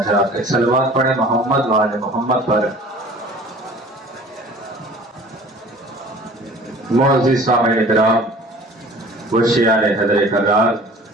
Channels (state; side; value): normal; both; correlation 0.46